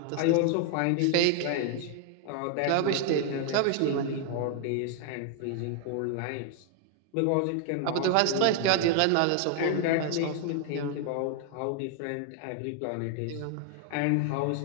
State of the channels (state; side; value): different; both; correlation 0.00